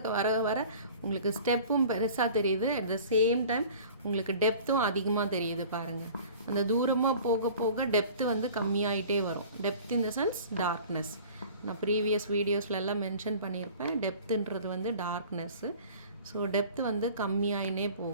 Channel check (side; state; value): both; inverted; correlation -0.45